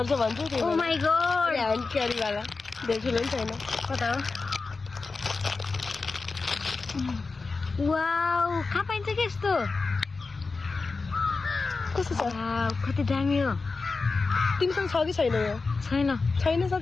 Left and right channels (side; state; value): right; quieter; 4.1 dB